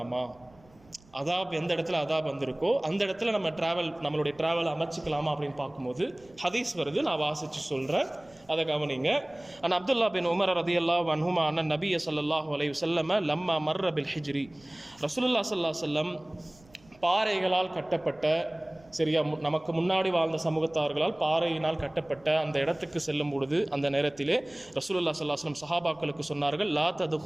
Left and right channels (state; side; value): noise; right; rumble, 28 dB below the sound